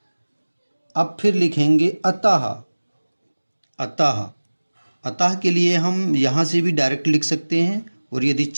अब फिर लिखेंगे अतः, अतः के लिए हम यहाँ से भी डायरेक्ट लिख सकते हैं, और यदि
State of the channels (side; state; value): both; inverted; correlation -1.00